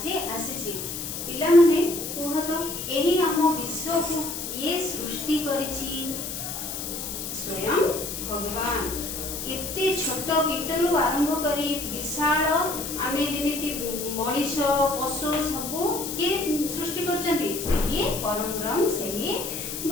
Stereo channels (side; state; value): left; noise; hiss, 6 dB below the sound